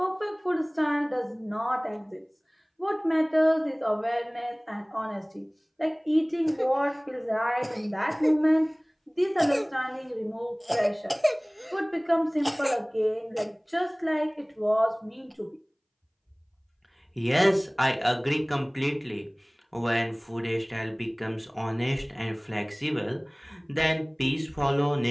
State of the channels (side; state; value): both; identical; correlation 1.00